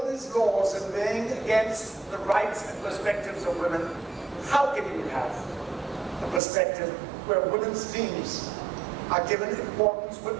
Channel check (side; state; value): left; drops out; at 6.4 s